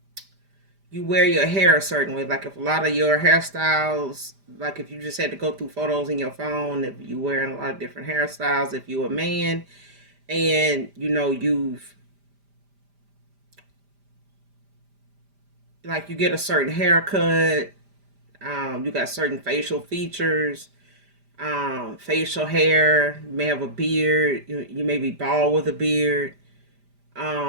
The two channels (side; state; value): left; late; 5.0 ms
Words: you wear your hair a certain way, like if a lot of your hairstyles, like if you just had to go through photos in your phone, if you wearing a lot of different hairstyles, if you're a man and you know you've like you get a certain haircut, you got certain facial features, facial hair, you may have a beard, you may be bald with a beard.